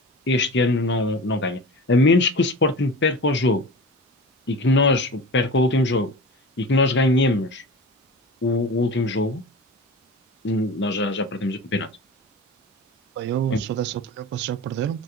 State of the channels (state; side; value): normal; both; correlation 0.33